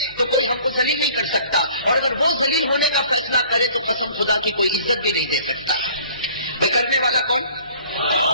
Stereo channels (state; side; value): inverted; both; correlation -0.53